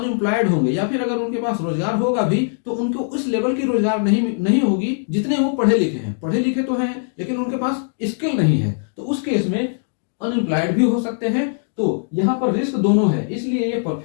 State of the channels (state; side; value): silent; right; digital silence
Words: होंगे, या फिर अगर उनके पास रोजगार होगा भी तो उनको उस लेवल की रोजगार नहीं होगी जितने वो पढ़े लिखे हैं। पढ़े लिखे तो हैं लेकिन उनके पास स्किल नहीं है, तो उस केस में अनएम्प्लॉयड भी हो सकते हैं। तो यहाँ पर रिस्क दोनों है, इसलिए ये